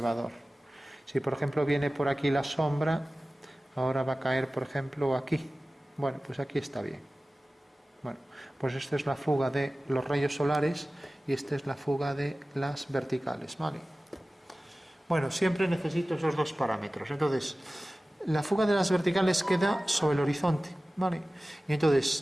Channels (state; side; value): normal; both; correlation 0.97